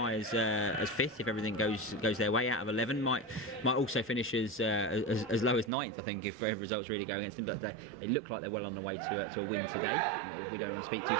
as 5th if everything goes their way. Out of 11, might also finish as low as 9th. I think if results really go against them. But they look like they're well on the way to a win today. We don't want to speak too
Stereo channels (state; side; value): drops out; left; at 5.7 s